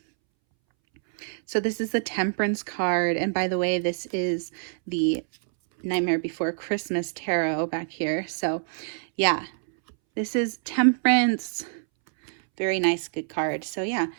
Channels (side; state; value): left; silent; 61 dB below the other